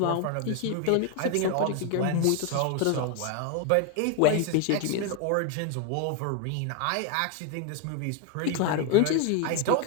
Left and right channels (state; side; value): different; both; correlation 0.01